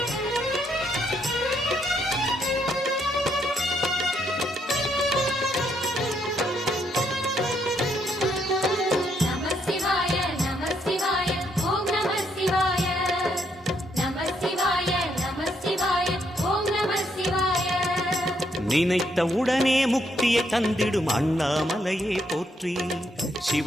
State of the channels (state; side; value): normal; both; correlation 0.74